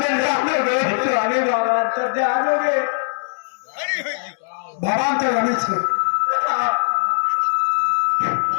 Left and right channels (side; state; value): right; silent; digital silence